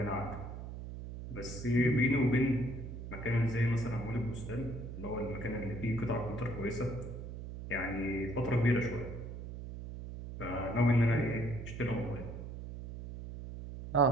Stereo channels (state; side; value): noise; right; hum, 9 dB below the sound